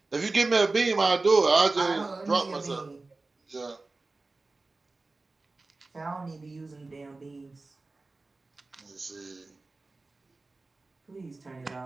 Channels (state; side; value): quieter; left; 3.4 dB